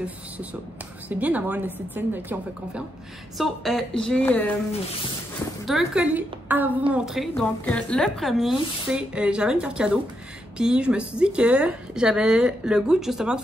ça. C'est bien d'avoir une esthéticienne de qui on fait confiance. So, j'ai 2 colis à vous montrer. Donc, le premier, c'est... j'avais une carte cadeau. Puis, je me suis dit que j'avais le goût, justement, de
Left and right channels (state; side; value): normal; both; correlation 0.81